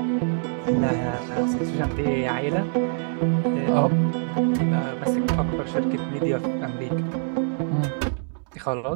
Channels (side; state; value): left; silent; digital silence